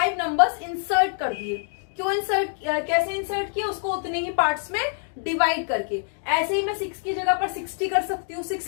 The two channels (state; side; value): silent; right; 62 dB below the other